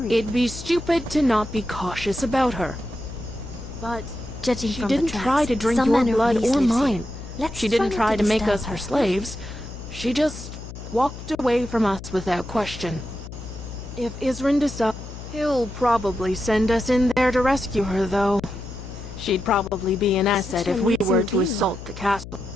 It'd be stupid to not be cautious about her. But Judging she from didn't the tracks, try to drink some your man or blood beast or lives here. mine. Let's She didn't not try to make disturb us her her. slaves. She just walked away from us without question. If Isrin decides, he'll probably send us in there to rescue her, though. She'd probably be an asset if we were to assault the castle.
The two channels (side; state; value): left; noise; hum, 12 dB below the sound